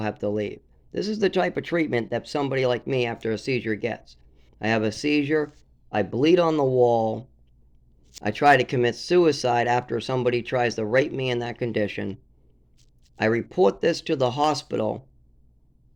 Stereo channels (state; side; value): identical; both; correlation 1.00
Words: have to leave. This is the type of treatment that somebody like me after a seizure gets. I have a seizure. I bleed on the wall. I try to commit suicide after somebody tries to rape me in that condition. I report this to the hospital,